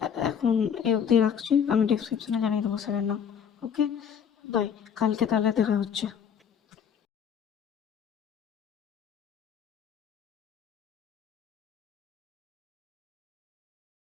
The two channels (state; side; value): quieter; right; 7.8 dB